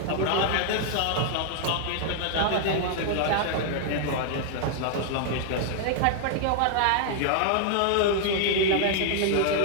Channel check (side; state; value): both; different; correlation 0.00